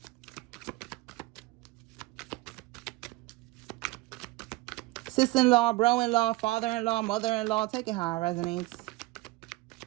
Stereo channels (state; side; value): quieter; left; 20.4 dB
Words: Sister-in-law, bro-in-law, father-in-law, mother-in-law. Take it how it resonates.